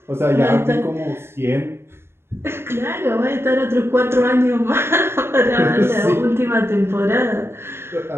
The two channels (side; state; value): left; late; 0.12 ms